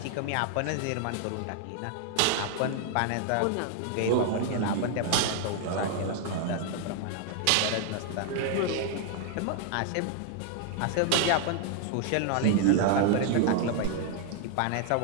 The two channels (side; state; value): both; different; correlation 0.00